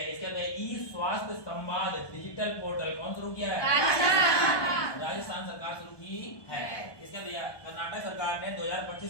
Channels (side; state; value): right; late; 1.2 ms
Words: इसके बाद ई स्वास्थ्य संवाद डिजिटल पोर्टल कौन शुरू किया है? राजस्थान सरकार शुरू की है। इसके बाद कर्नाटक सरकार ने